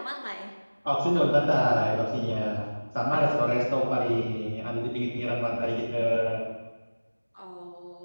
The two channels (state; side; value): inverted; both; correlation -1.00